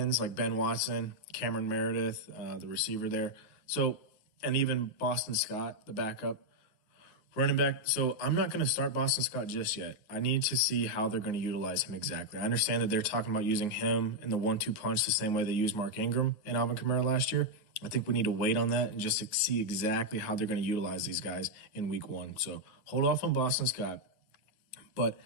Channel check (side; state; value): right; late; 9.6 ms